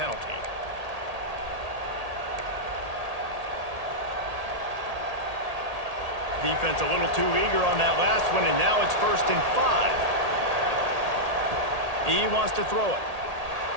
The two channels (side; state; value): left; late; 1.8 ms